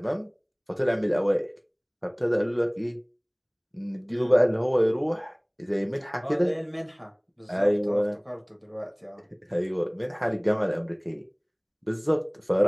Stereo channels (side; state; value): both; identical; correlation 1.00